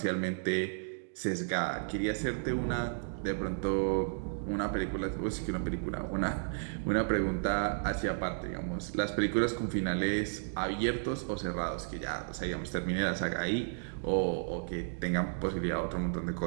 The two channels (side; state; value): left; silent; digital silence